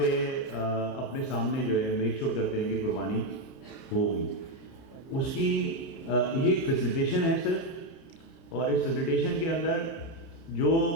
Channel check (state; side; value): late; right; 30 ms